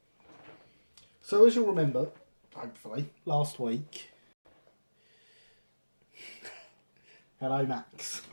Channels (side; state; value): both; inverted; correlation -1.00